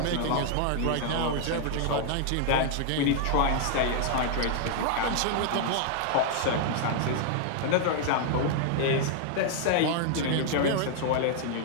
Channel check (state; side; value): different; both; correlation 0.00